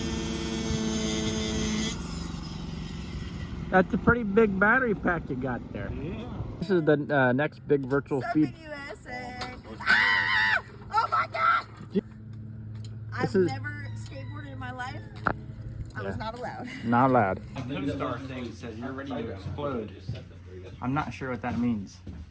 That's a pretty big battery pack you got there. Yeah. This is the next big virtual speed. USA. Ah! Oh my God! I've never skateboarded in my life. I was not allowed. Not allowed. The co-star thing says you're ready to explode. I'm not sure what that means.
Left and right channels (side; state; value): both; identical; correlation 1.00